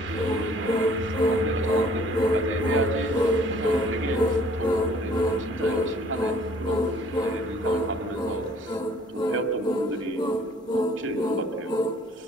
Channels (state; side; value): normal; both; correlation 0.57